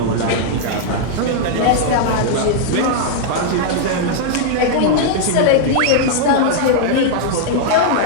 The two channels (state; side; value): different; both; correlation -0.01